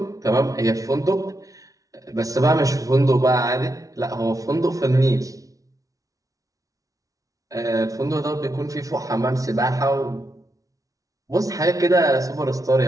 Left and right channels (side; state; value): left; late; 0.17 ms